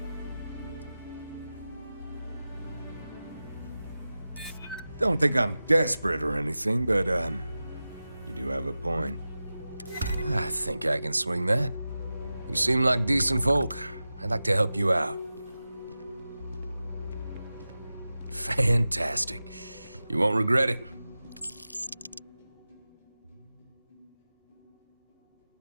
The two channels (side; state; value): both; inverted; correlation -0.94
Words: Don't think I'm desperate or anything, but, you do have a point. I think I can swing that. You seem like decent folk. I'd like to help you out. Fantastic. You won't regret it.